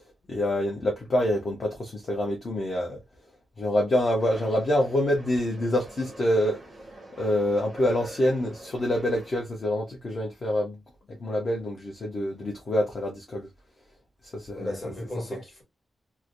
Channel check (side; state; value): both; normal; correlation 0.82